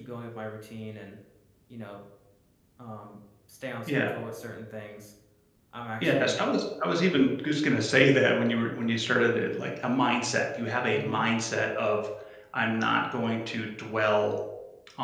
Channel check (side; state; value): both; identical; correlation 1.00